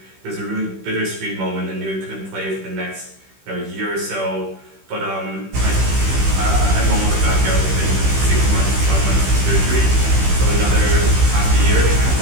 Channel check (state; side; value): late; left; 15 ms